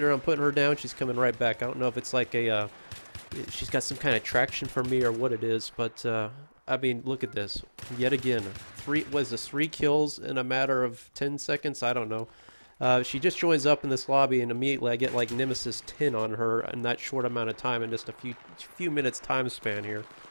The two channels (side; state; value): both; inverted; correlation -1.00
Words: I'm putting her down, she's coming right back. I don't know if it's like she's got some kind of traction for me or what it is, but I mean, look at this. Yet again, three kills in a matter of 10 seconds? I don't know. She just joins up in this lobby, and immediately I get like Nemesis 10 on her in that short amount of time, in just a few minutes time span here.